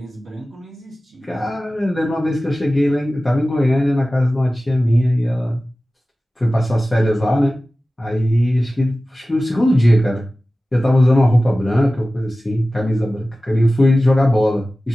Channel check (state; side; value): normal; both; correlation 0.96